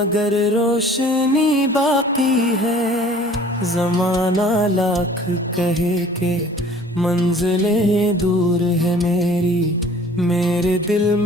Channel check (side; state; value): both; normal; correlation 0.50